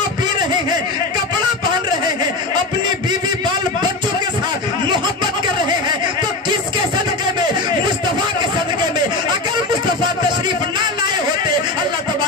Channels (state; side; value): quieter; right; 3.1 dB